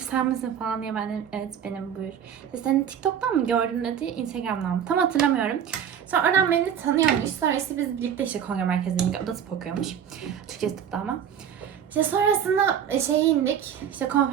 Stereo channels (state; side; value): quieter; left; 8.7 dB